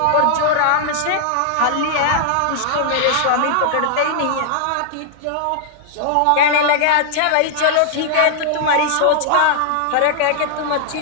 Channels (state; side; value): different; both; correlation -0.01